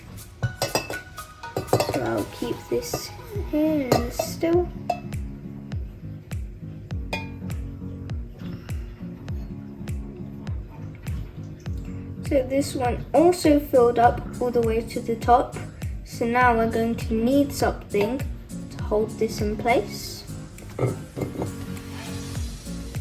So I'll keep this here still. So this one also filled up all the way to the top. So now we're going to need something to hold this in place. And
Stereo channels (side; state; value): both; identical; correlation 1.00